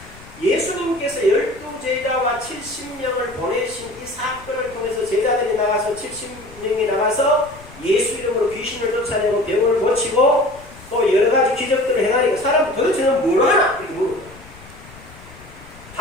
예수님께서 12제자와 70명을 보내신 이 사건을 통해서 제자들이 나가서 70명이 나가서 예수 이름으로 귀신을 쫓아내고 병을 고치고 또 여러가지 기적들을 행하니까 사람들 도대체 넌 뭘 하나? 이렇게 물어요.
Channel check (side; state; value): left; noise; rumble, 21 dB below the sound